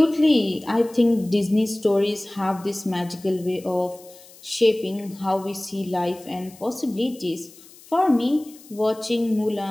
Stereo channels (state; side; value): noise; left; hiss, 22 dB below the sound